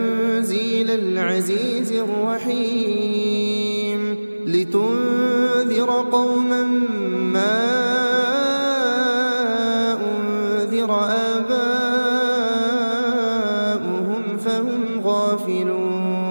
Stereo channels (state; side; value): inverted; both; correlation -1.00